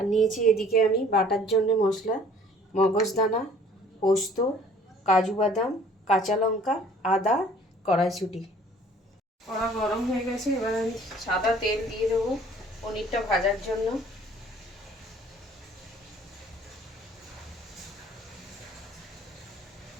নিয়েছি এদিকে আমি বাটার জন্য মশলা, মগজদানা, পোস্ত, কাজু বাদাম, কাঁচা লঙ্কা, আদা, কড়াইশুঁটি। কড়া গরম হয়ে গেছে, এবার আমি সাদা তেল দিয়ে দেবো পনিরটা ভাজার জন্য।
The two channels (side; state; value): both; normal; correlation 0.54